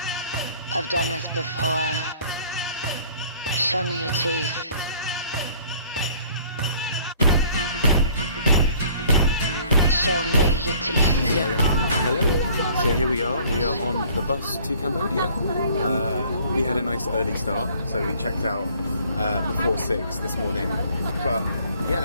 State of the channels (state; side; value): inverted; both; correlation -0.55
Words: I've done this before. Show me your teeth. Show me your teeth. Hello. So here we are. We are on the bus to Cambodia. We had a nice early start, so we checked out before 6 this morning. But